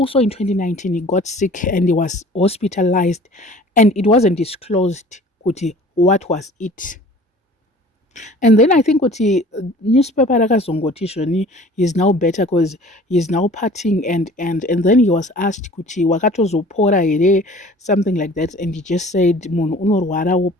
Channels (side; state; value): both; normal; correlation 0.47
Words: in 2019, he got sick and he was hospitalized, and it wasn't disclosed kuti what was it. And then I think kuti newspaper rakazongoti zvoni he's now better because he's now partying, and then he was asked kuti wakatozopora here, something like that, and he just said munhu unorwara